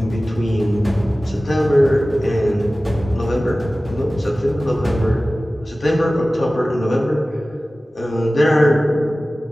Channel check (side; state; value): both; normal; correlation 0.97